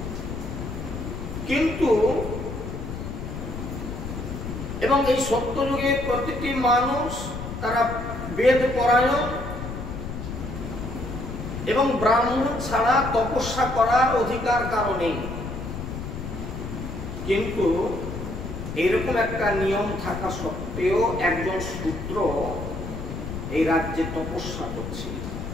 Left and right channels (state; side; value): noise; left; rumble, 7 dB below the sound